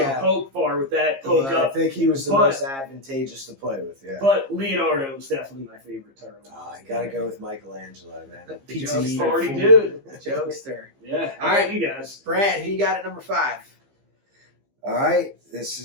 poke far with that, poke up. I think he was the most advantageous to play with, But Leonardo was definitely my favorite turtle. I gotta go with Michelangelo, man. The Pizza party dude. Jokester. Yeah. All right, you guys. Brad, who you got at number 5? All right, this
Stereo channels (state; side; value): late; left; 15 ms